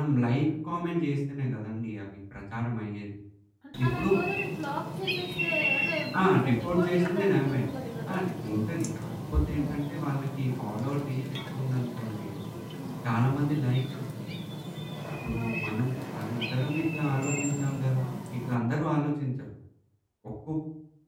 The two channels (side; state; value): both; identical; correlation 1.00